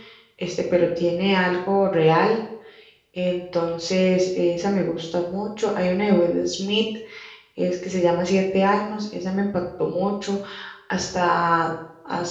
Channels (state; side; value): identical; both; correlation 1.00